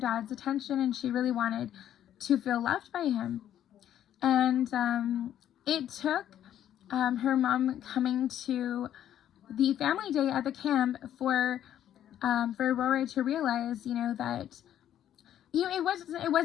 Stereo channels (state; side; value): quieter; right; 11.0 dB